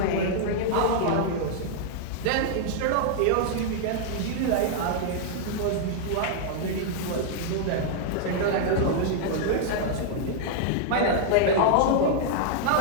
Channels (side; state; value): both; different; correlation -0.01